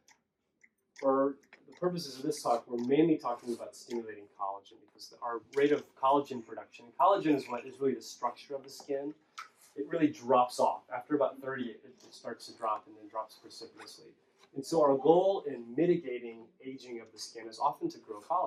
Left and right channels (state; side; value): identical; both; correlation 1.00